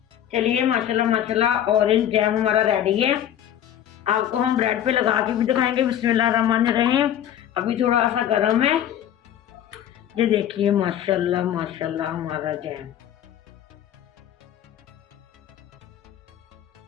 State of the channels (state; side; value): quieter; right; 10.7 dB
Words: चलिए माशाल्लाह माशाल्लाह ऑरेंज जैम हमारा रेडी है। आपको हम ब्रेड पे लगा के भी दिखाएंगे। बिस्मिल्लाहिर्रहमानिर्रहीम। अभी थोड़ा सा गर्म है। ये देखिए माशाल्लाह माशाल्लाह हमारा जैम।